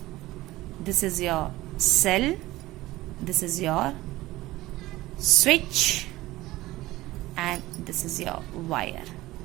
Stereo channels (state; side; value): quieter; left; 17.8 dB